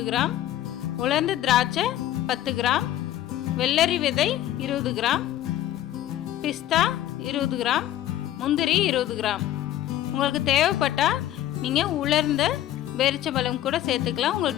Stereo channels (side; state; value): right; quieter; 12.8 dB